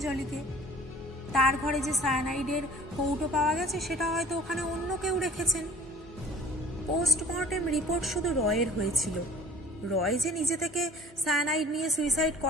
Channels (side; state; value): both; normal; correlation 0.48